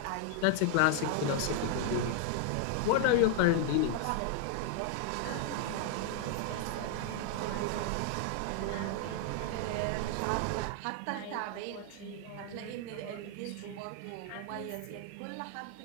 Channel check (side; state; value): both; different; correlation 0.00